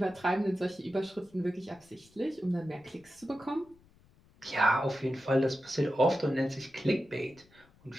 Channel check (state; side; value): noise; left; rumble, 29 dB below the sound